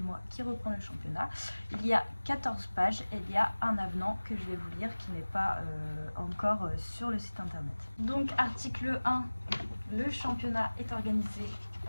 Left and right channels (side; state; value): both; inverted; correlation -1.00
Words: moi qui reprends le championnat. Il y a 14 pages et il y a un avenant que je vais vous lire qui n'est pas encore sur le site internet. Donc article 1, le championnat est organisé